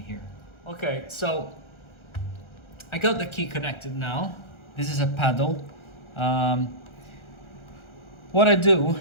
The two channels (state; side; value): late; right; 1.3 ms